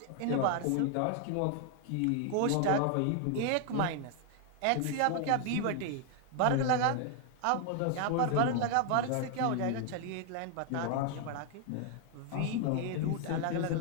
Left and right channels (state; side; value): different; both; correlation 0.00